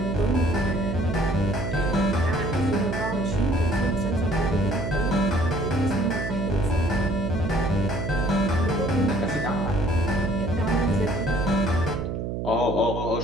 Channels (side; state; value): right; noise; hum, 3 dB below the sound